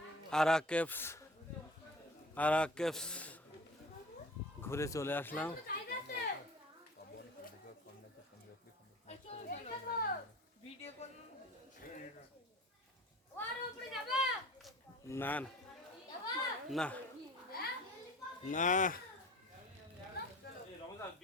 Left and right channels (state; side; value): normal; both; correlation 0.42